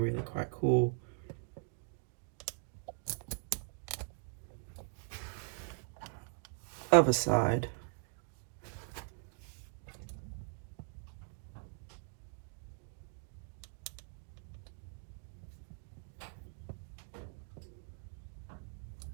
really quite cool. Other side.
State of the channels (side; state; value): left; silent; 51 dB below the other